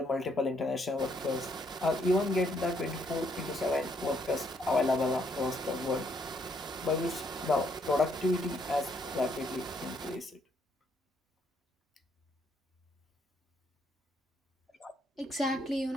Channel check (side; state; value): both; normal; correlation 0.71